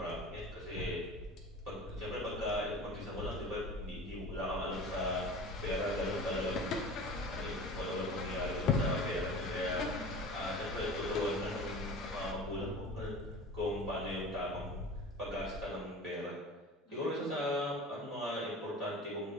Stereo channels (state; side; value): normal; both; correlation 0.37